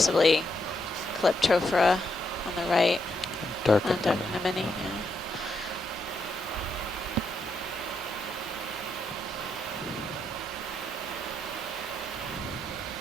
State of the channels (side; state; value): both; normal; correlation 0.79